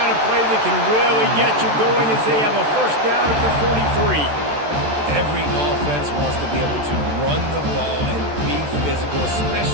of play that can really get you going as they have a 1st down at the 43. Every offense wants to be able to run the ball and be physical,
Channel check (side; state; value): left; late; 13 ms